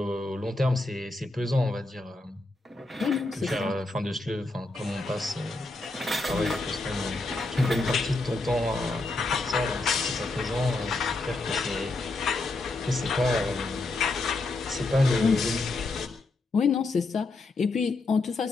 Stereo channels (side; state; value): right; quieter; 3.2 dB